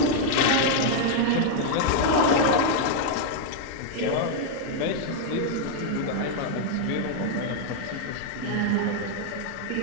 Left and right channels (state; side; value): different; both; correlation 0.00